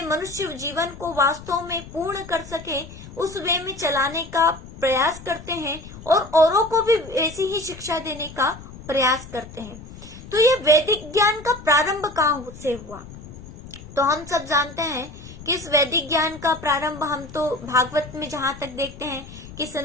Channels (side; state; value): left; noise; rumble, 15 dB below the sound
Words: मनुष्य जीवन को वास्तव में पूर्ण कर सके, उस वे में चलाने का प्रयास करते हैं और औरों को भी ऐसी ही शिक्षा देने का प्रयास करते हैं। तो ये वैदिक ज्ञान का प्रारंभ कहाँ से हुआ, तो हम सब जानते हैं कि इस वैदिक ज्ञान का प्रारंभ हम तो भागवत में जहाँ तक देखते हैं कि